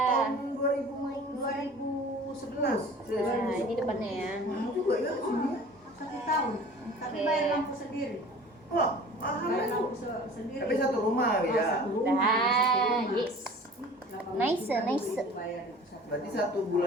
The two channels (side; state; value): both; normal; correlation 0.44